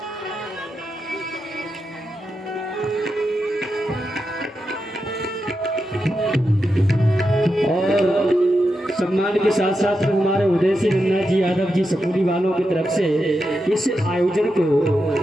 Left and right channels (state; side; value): normal; both; correlation 0.87